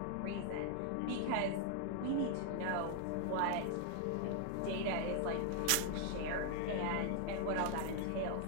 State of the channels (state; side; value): different; both; correlation 0.00